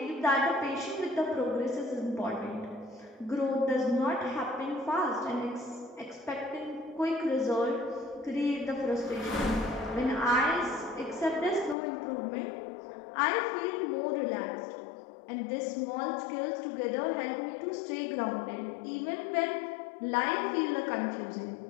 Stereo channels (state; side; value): drops out; right; at 11.8 s